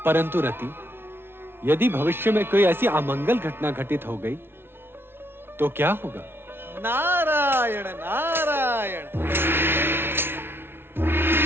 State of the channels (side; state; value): left; late; 0.11 ms